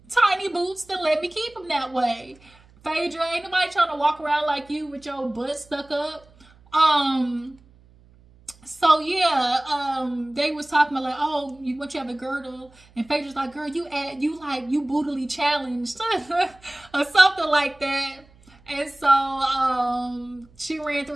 tiny boots, then let me keep them that way. Phaedra, ain't nobody trying to walk around like you with your butt stuck up. So yeah, they was talking about like, oh, you have a girdle, and Phaedra's like, girl, you bootily challenged, or something like that. And so she ran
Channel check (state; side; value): noise; right; hum, 28 dB below the sound